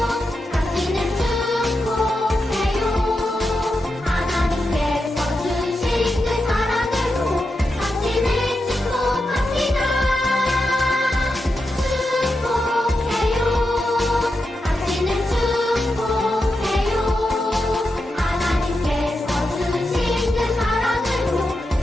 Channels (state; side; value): normal; both; correlation 0.88